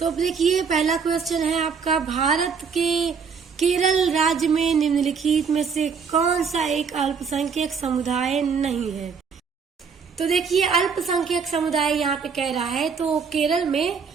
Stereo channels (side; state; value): left; quieter; 5.9 dB